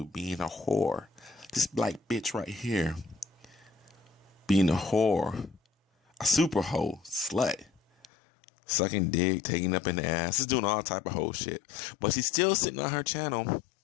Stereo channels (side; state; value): right; drops out; at 8.1 s